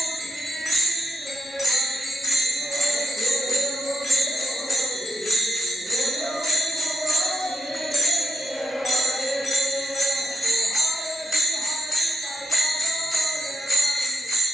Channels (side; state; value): both; normal; correlation 0.84